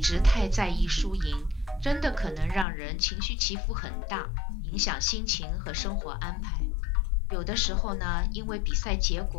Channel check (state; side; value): drops out; right; at 2.7 s